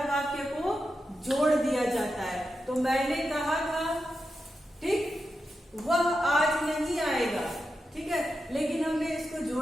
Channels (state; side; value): normal; both; correlation 0.88